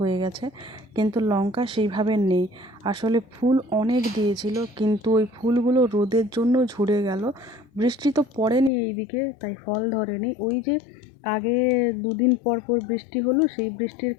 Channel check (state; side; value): drops out; right; at 8.7 s